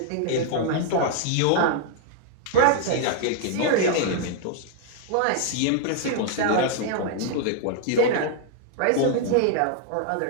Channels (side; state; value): both; different; correlation 0.00